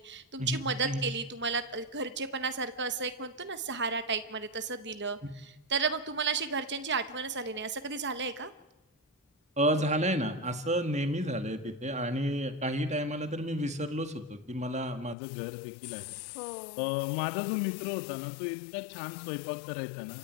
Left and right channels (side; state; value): right; drops out; at 15.2 s